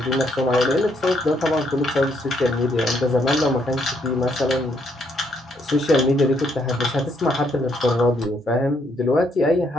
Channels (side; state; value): both; normal; correlation 0.73